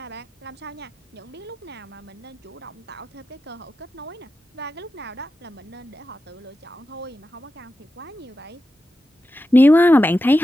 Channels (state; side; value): normal; both; correlation 0.91